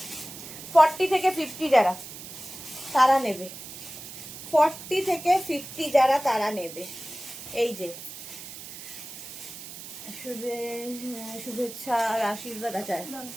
ফর্টি থেকে 50 যারা তারা নেবে, 40 থেকে 50 যারা তারা নেবে। এই যে শুভেচ্ছা আর আশীর্বাদ আছে।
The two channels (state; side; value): noise; right; hiss, 12 dB below the sound